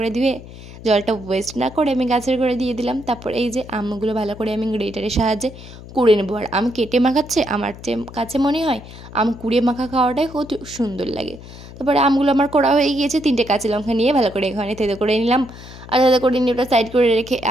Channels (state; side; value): noise; left; hum, 16 dB below the sound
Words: ধুয়ে জলটা ওয়েস্ট না করে আমি গাছের করে দিয়ে দিলাম। তারপর এই যে আমগুলো ভালো করে আমি গ্রেটারের সাহায্যে কুড়ে নেবো। আর আম কেটে মাখাচ্ছে আমার কাছে মনে হয় আম কুড়িয়ে মাখা খাওয়াটাই কত সুন্দর লাগে। তারপরে আমগুলো আমার করা হয়ে গিয়েছে। 3টে কাঁচা লঙ্কা নিয়ে ভালো করে এখানে থেতো করে নিলাম। আর থেতো করে নিয়ে ওটা সাইড করে রেখে